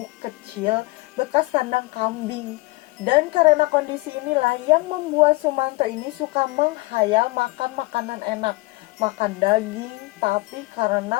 kecil bekas kandang kambing. Dan karena kondisi inilah yang membuat Sumanto ini suka menghayal makan makanan enak, makan daging. Tapi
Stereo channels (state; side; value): quieter; right; 22.6 dB